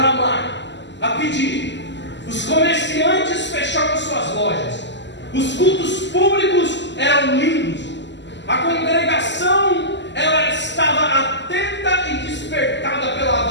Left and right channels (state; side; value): late; right; 0.52 ms